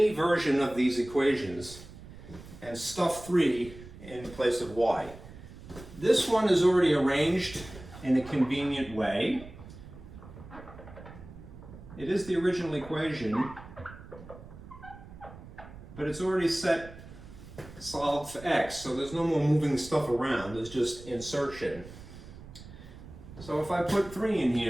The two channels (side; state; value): right; noise; rumble, 16 dB below the sound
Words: version of these equations and stuff 3 in place of y. This one is already arranged in a convenient way. It is the original equation, but it's already set solid for x, so there's no more moving stuff around, there's just insertion. So if I put 3 in